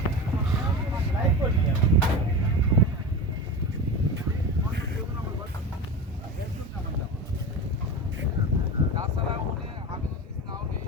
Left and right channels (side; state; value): both; normal; correlation 0.27